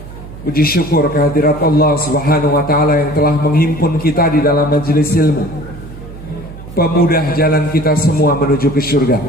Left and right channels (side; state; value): right; noise; hum, 15 dB below the sound